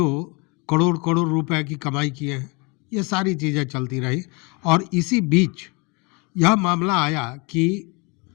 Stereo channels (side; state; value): right; quieter; 29.5 dB